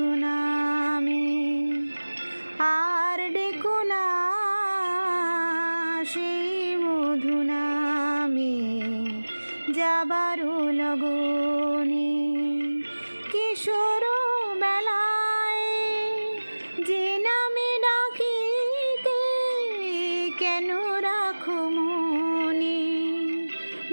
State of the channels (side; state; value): both; inverted; correlation -1.00